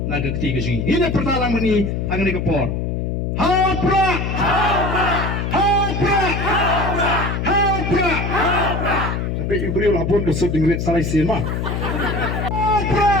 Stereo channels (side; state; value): left; noise; hum, 1 dB below the sound